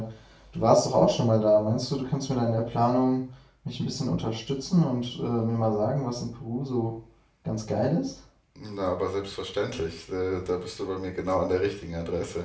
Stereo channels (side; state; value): both; identical; correlation 1.00